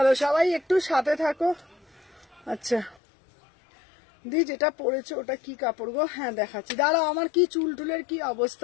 সবাই একটু সাথে থাকো। আচ্ছা দি, যেটা পরেছো ওটা কি কাপড় গো? হ্যাঁ দেখাচ্ছি, দাঁড়াও আমার কি চুল টুলের কি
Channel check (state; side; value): drops out; right; at 3.0 s